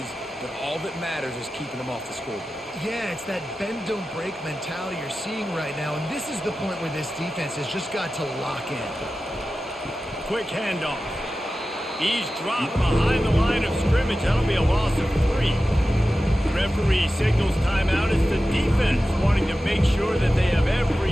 but all that matters is keeping them off the scoreboard. Yeah, it's that bend, don't break mentality you're seeing right now, and this is the point where this defense has just got to lock in. Quick handoff. He's dropped behind the line of scrimmage. That'll be a loss of 3. Referee signals timeout. It's the defense wanting to make sure that they have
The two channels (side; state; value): both; normal; correlation 0.94